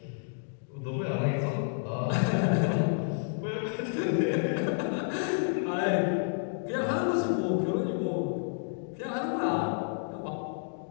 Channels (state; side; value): silent; right; digital silence